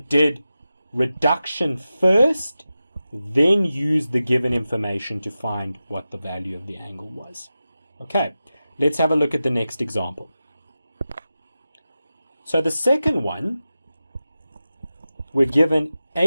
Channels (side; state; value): both; inverted; correlation -0.93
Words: reduction first, then use the given information to find what the value of the angle was? Okay, let's have a look at the next example. So the second one, we're given